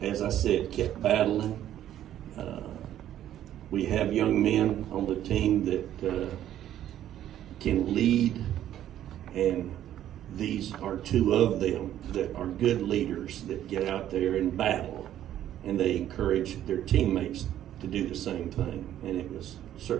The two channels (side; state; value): left; quieter; 11.7 dB